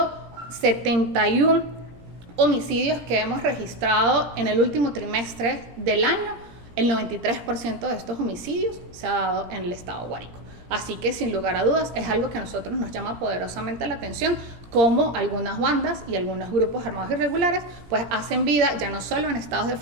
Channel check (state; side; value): late; left; 17 ms